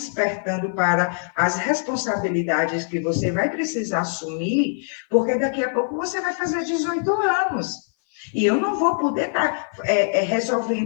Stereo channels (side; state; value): right; silent; 58 dB below the other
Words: para as responsabilidades que você vai precisar assumir, porque daqui a pouco você vai fazer 18 anos. E eu não vou poder estar